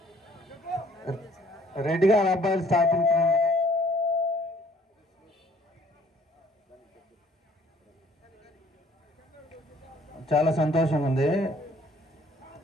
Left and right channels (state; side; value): normal; both; correlation 0.59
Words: రెడ్డి గారి అబ్బాయిలు స్థాపించినందుకు చాలా సంతోషంగా ఉంది.